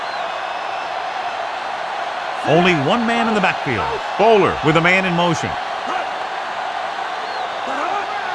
Only one man in the backfield. Bowler with a man in motion.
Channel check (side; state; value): both; identical; correlation 1.00